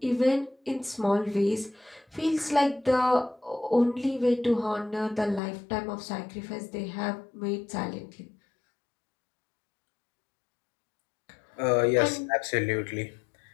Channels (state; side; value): drops out; right; at 5.4 s